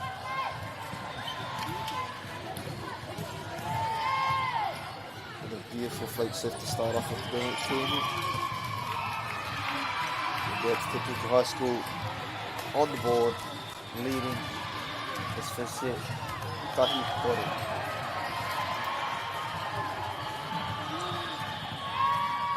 Beautiful flight shift to start off with the kēmu. That's Tepuki High School on the board, leading this first set. Tahi Kore.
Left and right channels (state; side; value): identical; both; correlation 1.00